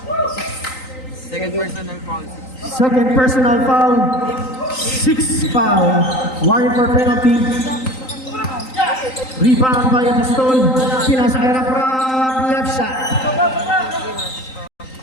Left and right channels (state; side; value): late; right; 3.9 ms